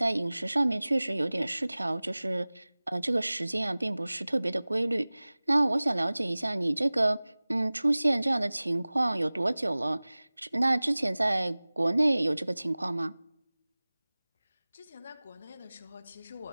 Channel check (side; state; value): both; inverted; correlation -0.99